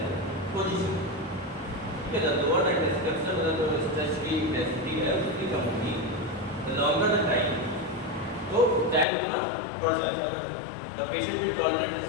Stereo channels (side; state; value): right; drops out; at 9.1 s